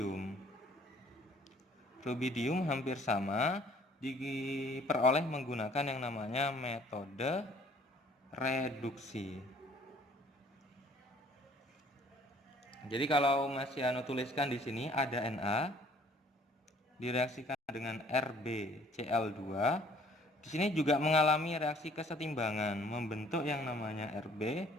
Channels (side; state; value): both; normal; correlation 0.56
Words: Rubidium hampir sama, diperoleh menggunakan yang namanya metode reduksi. Jadi kalau Mas Yano tuliskan di sini ada Na direaksikan dengan RbCl2. Di sini juga mengalami reaksi kesetimbangan membentuk yang namanya Rb